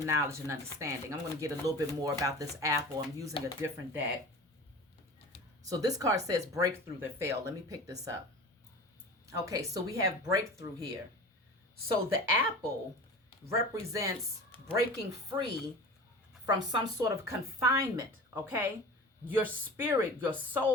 knowledge, and understanding. I'm going to get a little bit more about this apple. I'm using a different deck. So this card says breakthrough that failed. Let me pick this up. Okay, so we have breakthrough here. So the apple represents breaking free from some sort of confinement, okay? Your spirit, your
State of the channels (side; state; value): both; normal; correlation 0.36